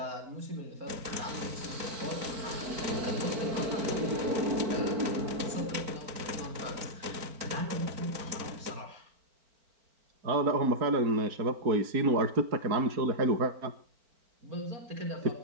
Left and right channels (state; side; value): late; left; 4.4 ms